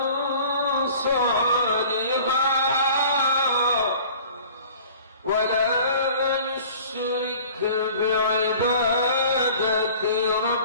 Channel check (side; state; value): both; inverted; correlation -0.46